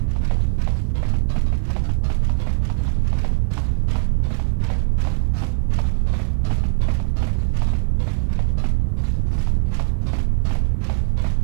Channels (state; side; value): silent; left; digital silence